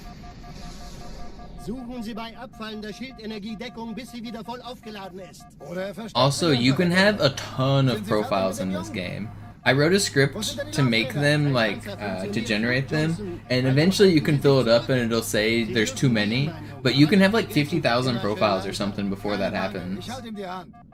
Suchen Sie bei abfallender Schildenergiedeckung, bis sie wieder voll aufgeladen ist. Also, you can have a ton of profiles in this game. I wrote a script to make them, like, to generate them, and eventually you can fill it up and it'll say there's too many, but you can have like 50,000 profiles or something before that happens.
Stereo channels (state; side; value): identical; both; correlation 1.00